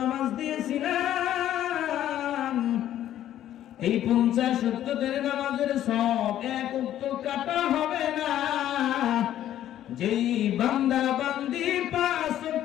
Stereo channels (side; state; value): right; quieter; 11.9 dB